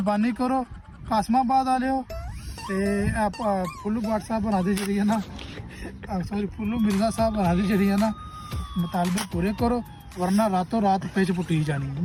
ਕਰੋ ਕਾਸਮਾਬਾਦ ਵਾਲਿਓ ਤੇ ਫੁੱਲੂ ਬਾਟ ਸਾਹਿਬ ਬਣਾ ਦੇ ਜਿਹੜੀ ਹੈ ਨਾ ਸੌਰੀ ਫੁੱਲੂ ਮਿਰਜ਼ਾ ਸਾਹਿਬ ਬਣਾ ਦੇ ਜਿਹੜੀ ਹੈ ਨਾ ਮੁਤਾਲਬੇ ਪੂਰੇ ਕਰੋ ਵਰਨਾ ਰਾਤੋਂ ਰਾਤ ਪਿੱਛ ਪੁੱਟੀ ਜਾਣੀ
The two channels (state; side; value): identical; both; correlation 1.00